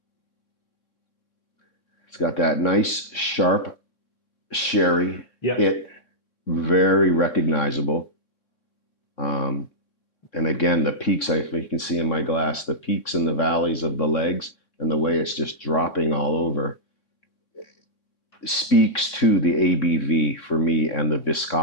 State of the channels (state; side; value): late; right; 3.6 ms